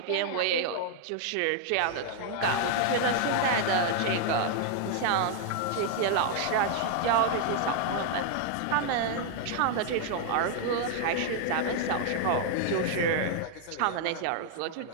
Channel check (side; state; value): both; different; correlation 0.00